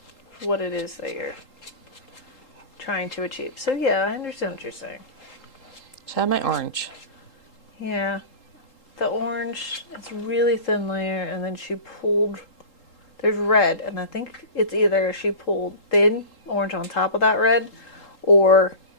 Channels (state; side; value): late; right; 3.8 ms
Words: what it is that you're trying to achieve. So yeah, I understand what you're saying. So I have my orange. Yeah. The orange, it's a really thin layer, and then she pulled, there's red, and I think it's either she pulled thin orange on top of that red, or...